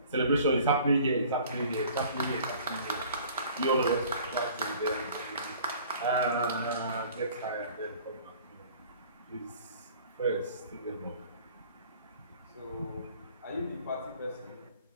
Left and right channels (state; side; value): inverted; both; correlation -0.50